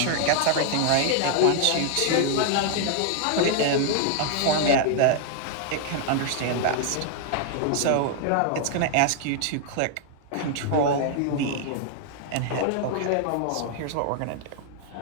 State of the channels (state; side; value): different; both; correlation 0.00